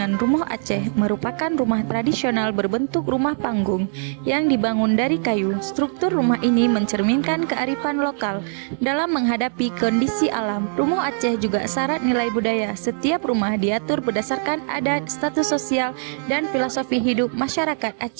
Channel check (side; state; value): left; silent; digital silence